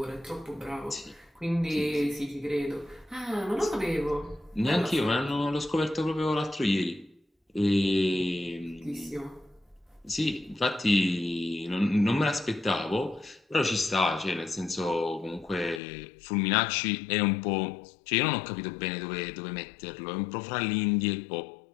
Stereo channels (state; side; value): drops out; right; at 15.8 s